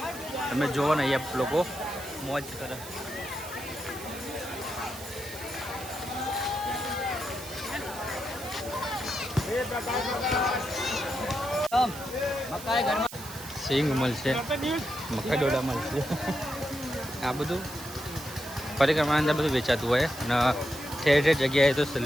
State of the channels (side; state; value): right; noise; hiss, 13 dB below the sound